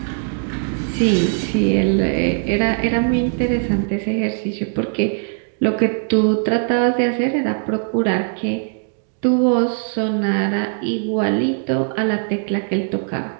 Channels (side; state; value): left; silent; digital silence